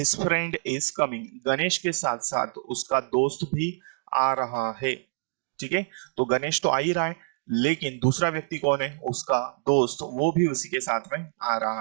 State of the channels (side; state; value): left; silent; digital silence